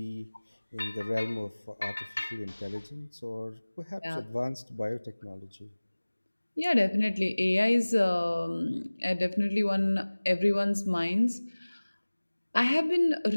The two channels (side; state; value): both; inverted; correlation -1.00